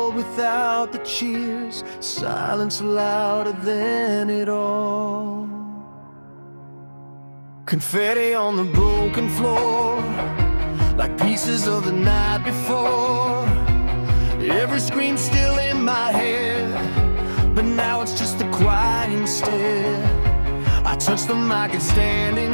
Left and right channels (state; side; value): inverted; both; correlation -1.00